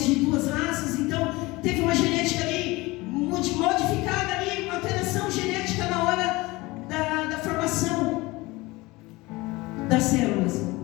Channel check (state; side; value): quieter; right; 21.8 dB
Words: de duas raças. Então teve uma genética ali modificada ali, uma alteração genética na hora da formação das células.